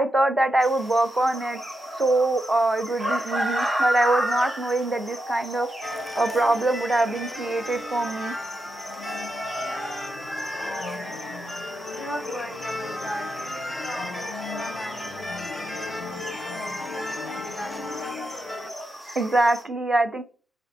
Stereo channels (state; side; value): normal; both; correlation 0.86